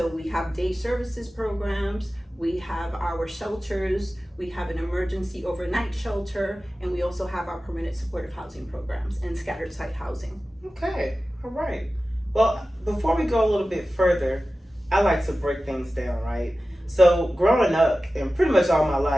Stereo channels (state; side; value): normal; both; correlation 0.95